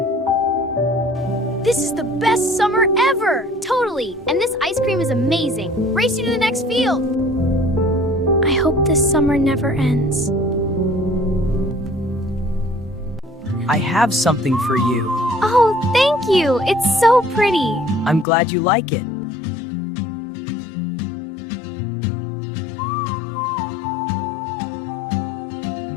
This is the best summer ever! Totally! And this ice cream is amazing. Race you to the next field! I hope this summer never ends. I have something for you. Oh, thank you! It's so pretty! I'm glad you like it.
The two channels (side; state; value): right; drops out; at 18.2 s